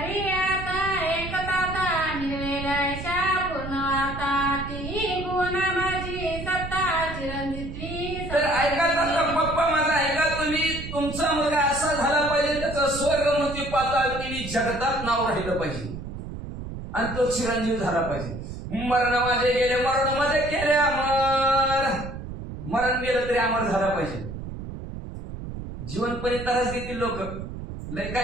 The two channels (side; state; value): right; noise; rumble, 9 dB below the sound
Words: आता एकता निर्वेलाशा पूर्ण आता ती गुण माझी सत्ता चिरंजीवी. तर ऐका पप्पा माझा ऐका तुम्ही. तुमचा मुलगा असा झाला पाहिजे त्याचं स्वर्गमुक्ती पाताळ तिने जगतात नाव राहिलं पाहिजे आणि तो चिरंजीव झाला पाहिजे. मरण माझे गेले मरण माझे केले अमर. मरण गेलं तरी अमर झाला पाहिजे. जिवंतपणे तरच देतील लोक लय